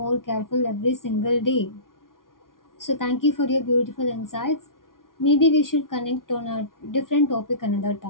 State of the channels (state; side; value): late; right; 0.90 ms